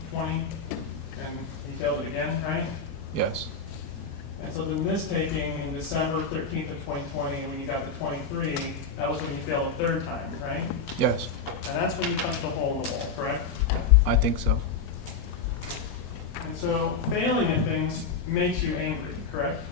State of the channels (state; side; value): quieter; right; 4.8 dB